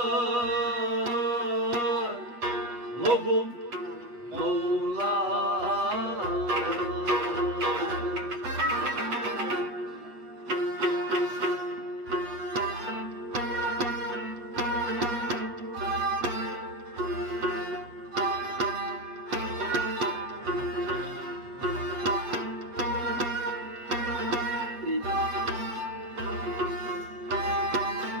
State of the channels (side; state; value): left; late; 7.9 ms